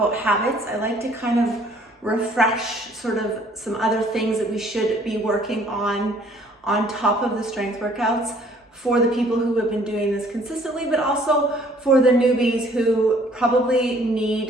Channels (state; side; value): normal; both; correlation 0.59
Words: habits. I like to kind of refresh sort of some other things that we should be working on top of the strength workouts for the people who have been doing this consistently, but also for the newbies who probably